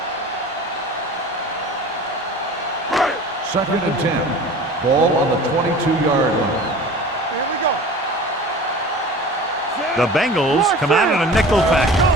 Second and 10. Ball on the 22-yard line. Here we go. The Bengals come out in a nickel package.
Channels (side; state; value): both; normal; correlation 0.40